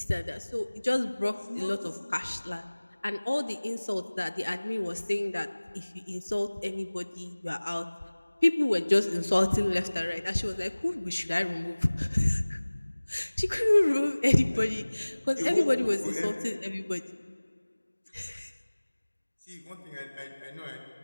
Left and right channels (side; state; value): both; inverted; correlation -1.00